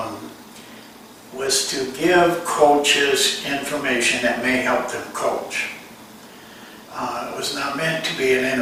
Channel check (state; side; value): identical; both; correlation 1.00